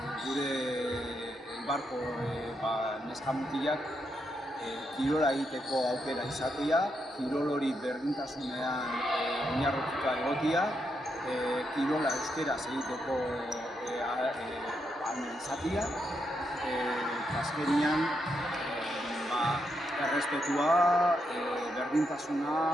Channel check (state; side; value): normal; both; correlation 0.81